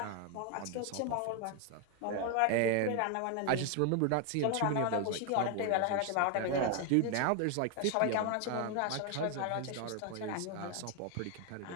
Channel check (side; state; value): both; different; correlation 0.01